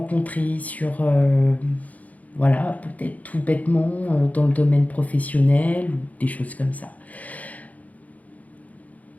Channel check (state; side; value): late; right; 0.074 ms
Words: sur, voilà, peut-être tout bêtement dans le domaine professionnel ou des choses comme ça.